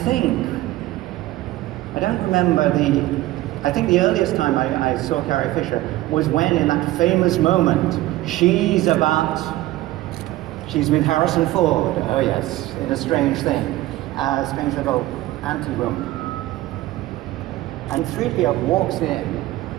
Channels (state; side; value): quieter; left; 16.6 dB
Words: don't remember I think the earliest time I saw Carrie Fisher was when, in that famous moment, she's with Harrison Ford, oh yes, in a strange thing, a strange little ante-room. And 3PO walks in,